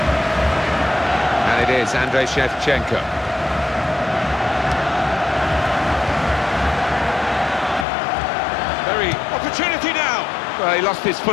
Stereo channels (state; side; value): drops out; right; at 7.9 s